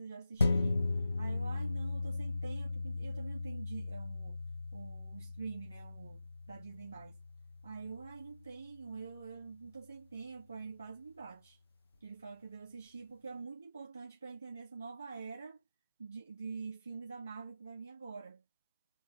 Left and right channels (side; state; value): both; inverted; correlation -0.92